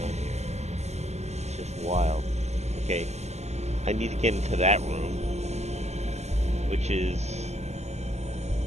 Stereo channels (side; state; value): left; late; 0.32 ms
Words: here. It's just wild. Okay, I need to get into that room, which is